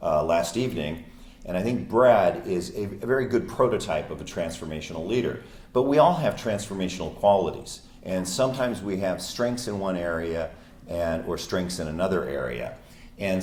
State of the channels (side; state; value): both; identical; correlation 1.00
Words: last evening. And I think Brad is a very good prototype of a transformational leader. But we all have transformational qualities. And sometimes we have strengths in one area or strengths in another area. And